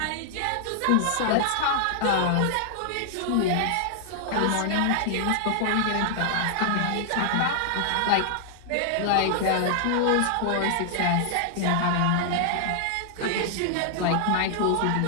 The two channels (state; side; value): different; both; correlation -0.01